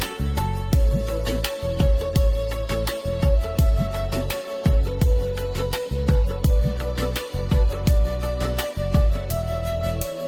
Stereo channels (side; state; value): both; identical; correlation 1.00